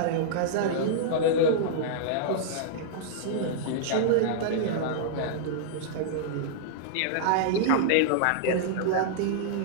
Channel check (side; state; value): both; different; correlation -0.02